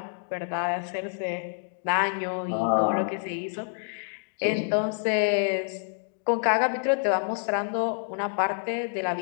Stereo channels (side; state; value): right; silent; digital silence